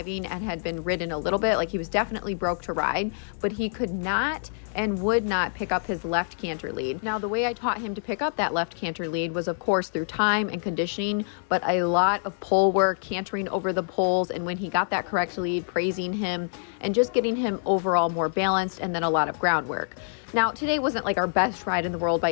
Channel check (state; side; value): silent; right; digital silence